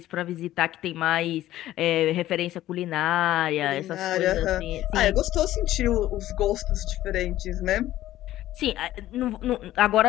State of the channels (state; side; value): quieter; right; 14.2 dB